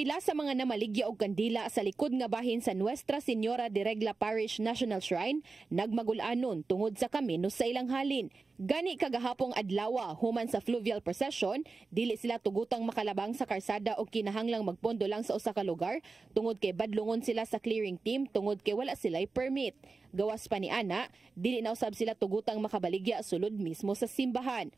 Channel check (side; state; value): left; quieter; 4.0 dB